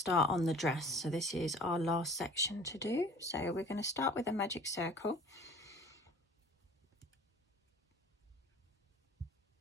on the dress. So this is our last section to do. So we're going to start with a magic circle.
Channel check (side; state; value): both; normal; correlation 0.47